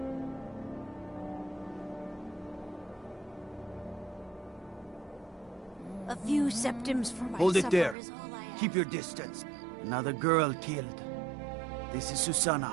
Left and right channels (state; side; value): drops out; left; at 8.0 s